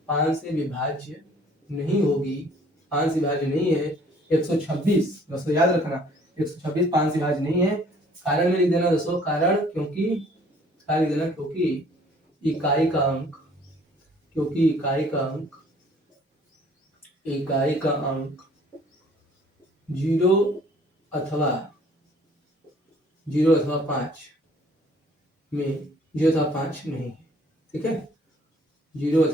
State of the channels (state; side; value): normal; both; correlation 0.57